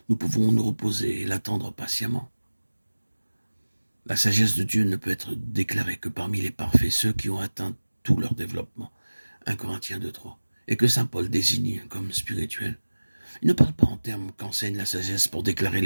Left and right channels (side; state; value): both; inverted; correlation -1.00